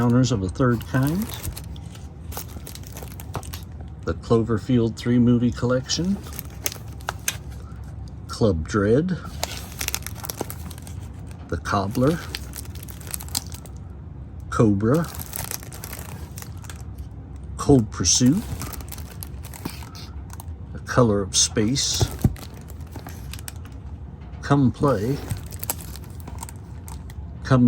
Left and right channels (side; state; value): both; identical; correlation 1.00